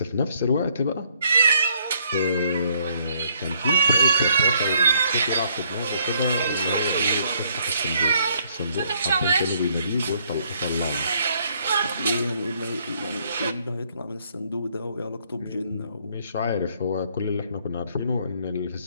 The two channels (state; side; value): inverted; both; correlation -0.68